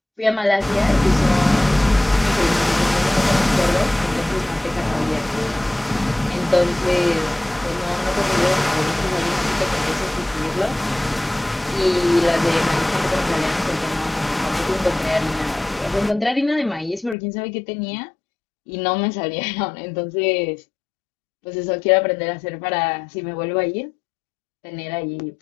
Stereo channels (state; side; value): drops out; right; at 17.2 s